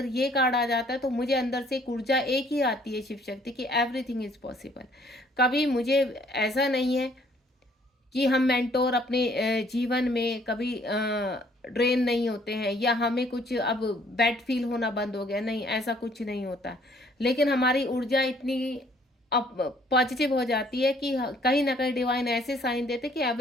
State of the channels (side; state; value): both; normal; correlation 0.61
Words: ये कार्ड आ जाता है तो मुझे अंदर से एक ऊर्जा एक ही आती है शिव शक्ति की, एवरीथिंग इज पॉसिबल। कभी मुझे ऐसा नहीं है कि हम मेंटोर अपने जीवन में कभी ड्रेन नहीं होते हैं, या हमें कुछ अब बैड फील होना बंद हो गया, नहीं, ऐसा कुछ नहीं होता। लेकिन हमारी ऊर्जा इतनी अब पॉजिटिव हो जाती है कि कहीं ना कहीं डिवाइन ऐसे साइन देते कि